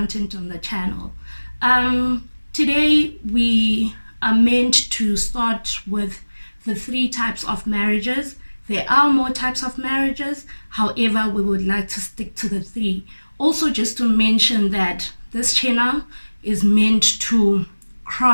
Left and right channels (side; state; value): both; inverted; correlation -1.00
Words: on the channel. Today we are meant to start with the 3 types of marriages. There are more types of marriages, however we would like to stick to the 3. Also, just to mention that this channel is meant to